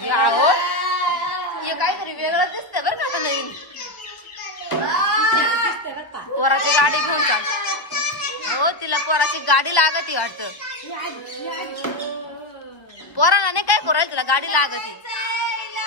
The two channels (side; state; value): right; late; 1.3 ms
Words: हो हे काहीतरी वेगळं दिसतंय बरं का आता नवीन पोराची गाडी घेऊन चाल हो तिला पोराची गाडी लागती वाटतं पोराला नाही काय करू तिला गाडी लागती